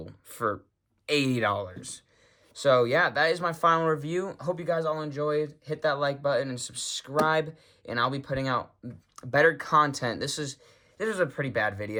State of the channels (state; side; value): identical; both; correlation 1.00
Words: for $80. So yeah, that is my final review. Hope you guys all enjoyed. Hit that like button and subscribe, and I'll be putting out better content. This is a pretty bad